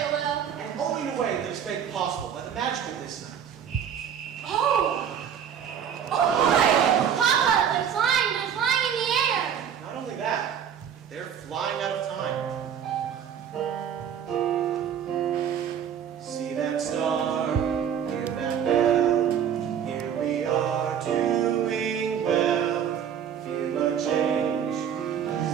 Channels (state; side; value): quieter; left; 8.5 dB